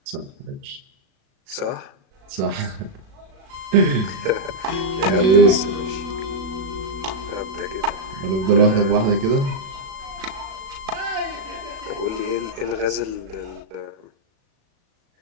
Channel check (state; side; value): late; left; 37 ms